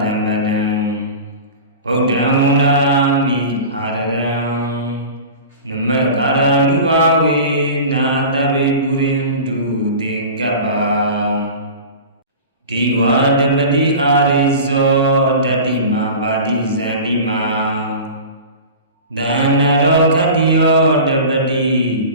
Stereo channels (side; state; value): both; inverted; correlation -0.35